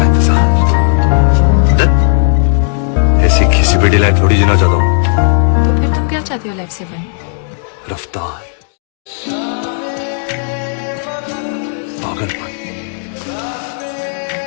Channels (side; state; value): right; silent; 62 dB below the other